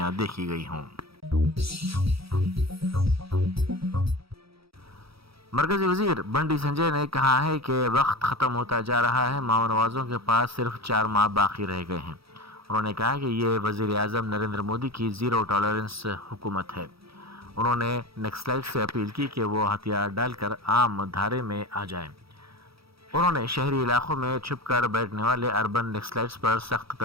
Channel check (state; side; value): late; left; 0.76 ms